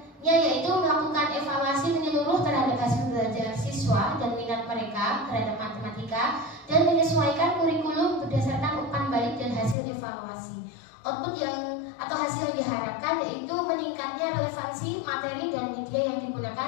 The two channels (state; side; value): drops out; right; at 9.8 s